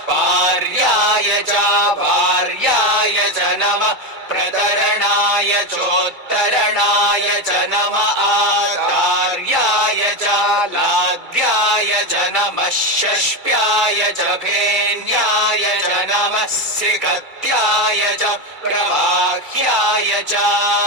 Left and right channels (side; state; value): left; late; 2.3 ms